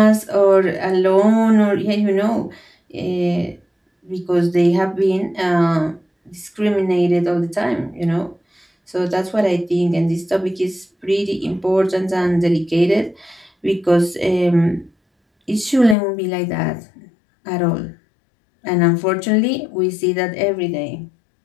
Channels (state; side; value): drops out; right; at 16.0 s